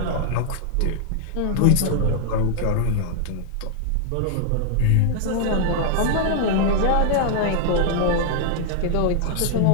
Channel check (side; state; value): both; different; correlation 0.00